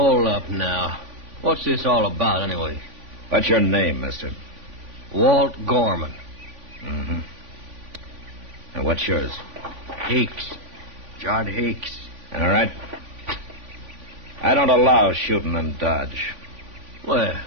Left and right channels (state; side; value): late; left; 3.5 ms